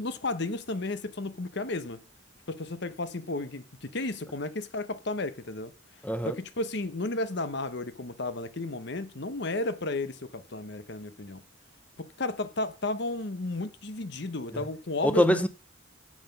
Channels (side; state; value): both; normal; correlation 0.31